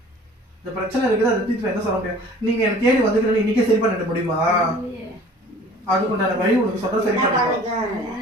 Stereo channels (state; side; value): normal; both; correlation 0.49